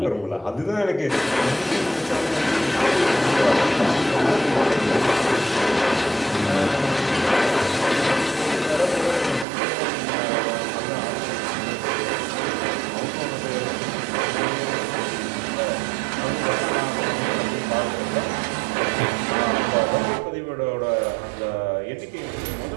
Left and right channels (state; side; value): drops out; left; at 9.5 s